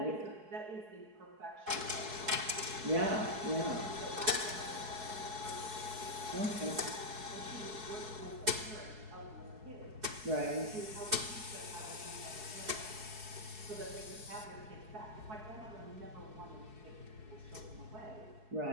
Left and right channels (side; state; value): left; late; 4.7 ms